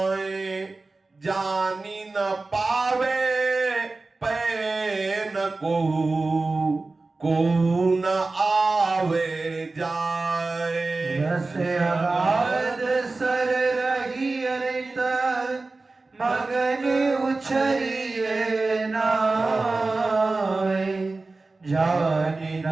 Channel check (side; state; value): left; quieter; 3.5 dB